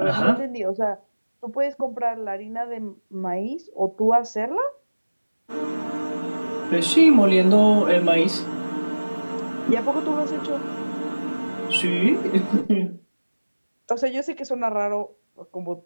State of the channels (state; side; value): inverted; both; correlation -1.00